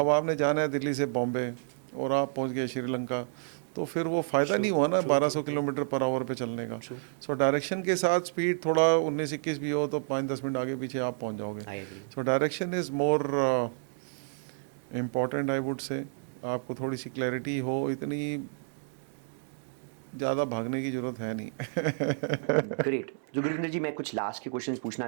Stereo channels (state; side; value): silent; left; digital silence